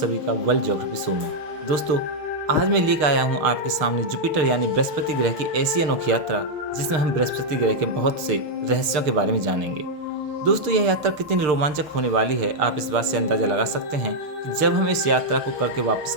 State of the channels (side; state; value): left; late; 6.6 ms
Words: का वर्ल्ड ज्योग्राफी शो में। दोस्तों, आज मैं लेकर आया हूँ आपके सामने जुपिटर यानी बृहस्पति ग्रह की ऐसी अनोखी यात्रा जिसमें हम बृहस्पति ग्रह के बहुत से रहस्यों के बारे में जानेंगे। दोस्तों, यह यात्रा कितनी रोमांचक होने वाली है, आप इस बात से अंदाजा लगा सकते हैं कि जब हम इस यात्रा को करके वापस